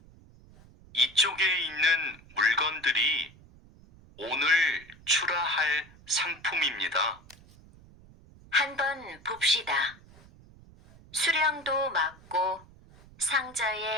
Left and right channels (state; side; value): noise; right; rumble, 24 dB below the sound